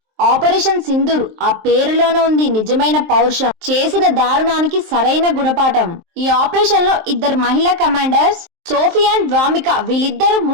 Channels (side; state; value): left; late; 23 ms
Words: ఆపరేషన్ సింధూర్, ఆ పేరులోనే ఉంది నిజమైన పౌరుషం. చేసిన దారుణానికి సరైన గుణపాఠం. ఈ ఆపరేషన్ లో ఇద్దరు మహిళా కమాండర్స్ సోఫియా అండ్ వామిక, వీళ్ళిద్దరూ